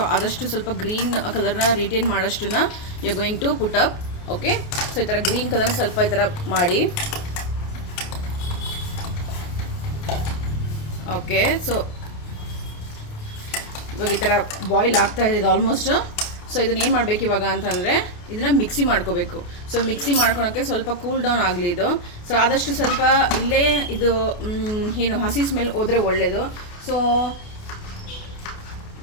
ಆದಷ್ಟು ಸ್ವಲ್ಪ ಗ್ರೀನ್ ಕಲರ್ನ ರಿಟೇನ್ ಮಾಡೋಷ್ಟನ್ನ you going to put up. Okay, so ಈ ಥರ ಗ್ರೀನ್ ಕಲರ್ನ ಸ್ವಲ್ಪ ಈ ಥರ ಮಾಡಿ. ಓಕೆ, ಸೊ ಇವಾಗ ಈ ಥರ ಬಾಯ್ಲ್ ಆಗ್ತಾ ಇದೆ ಆಲ್ಮೋಸ್ಟ್. ಸೊ ಇದನ್ನ ಏನು ಮಾಡಬೇಕು ಇವಾಗ ಅಂತಂದರೆ, ಇದನ್ನು ಮಿಕ್ಸಿ ಮಾಡ್ಕೋಬೇಕು. ಸೊ ಮಿಕ್ಸಿ ಮಾಡ್ಕೊಳಕ್ಕೆ ಸ್ವಲ್ಪ ಕೂಲ್ ಡೌನ್ ಆಗಲಿ ಇದು. ಸೊ ಆದಷ್ಟು ಸ್ವಲ್ಪ ಇಲ್ಲೇ ಇದು ಏನು ಹಸಿ ಸ್ಮೆಲ್ ಹೋದರೆ ಒಳ್ಳೆಯದು. ಸೊ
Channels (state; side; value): late; right; 28 ms